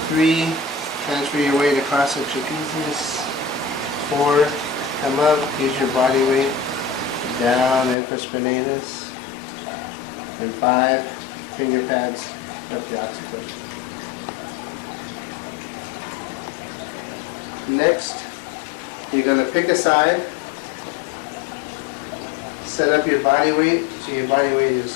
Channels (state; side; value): drops out; right; at 8.0 s